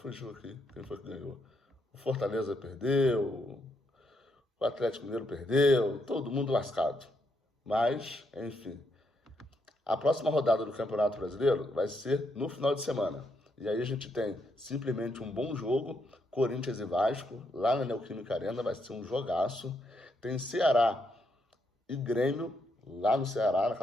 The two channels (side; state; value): both; normal; correlation 0.78